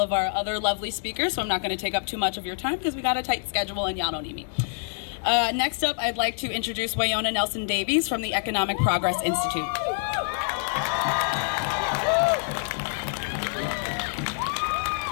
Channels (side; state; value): right; silent; digital silence